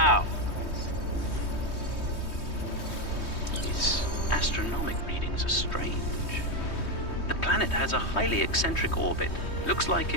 These astronomic readings are strange. The planet has a highly eccentric orbit. Looks like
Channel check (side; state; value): right; late; 3.2 ms